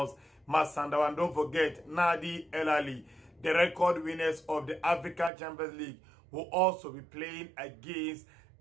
Masandawa. And don't forget, Nadi El Ahly, the record winners of the African Champions League, will also be playing against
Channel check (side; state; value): left; drops out; at 5.3 s